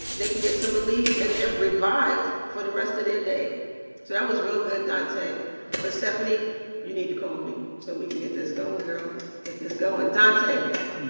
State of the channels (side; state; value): both; inverted; correlation -1.00